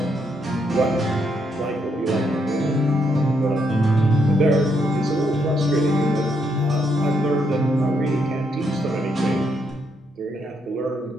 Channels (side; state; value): both; normal; correlation 0.76